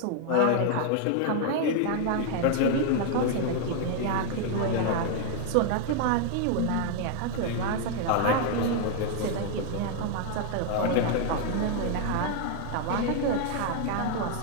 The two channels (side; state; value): both; different; correlation 0.00